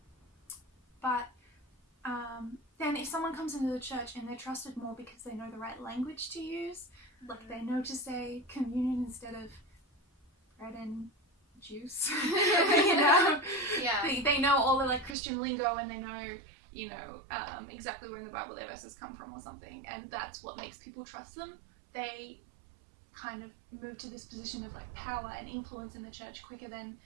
But then if someone comes into the church and they're trusted more because they know the right language to use, like they know to say communion instead of bread and juice, you know? Yeah. They know all the like Christian lingo, and they know, exactly where in the Bible their verses come from or something, and that's what makes people trust them. They kind of move to this position of like power and influence in the church quicker than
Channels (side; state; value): left; drops out; at 15.2 s